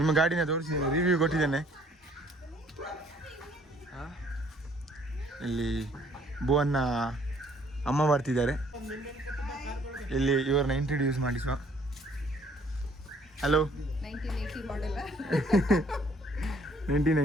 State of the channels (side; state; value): both; normal; correlation 0.61